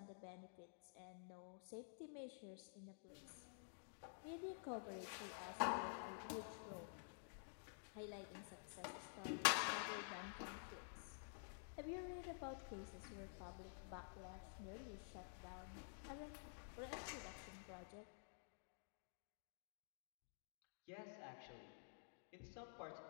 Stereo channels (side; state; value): right; silent; digital silence